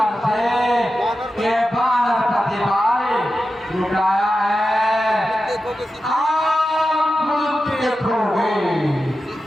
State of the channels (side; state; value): both; normal; correlation 0.92